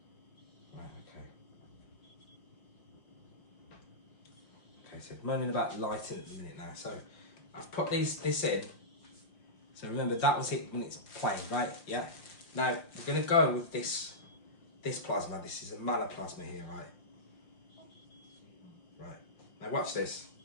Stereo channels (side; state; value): right; late; 5.7 ms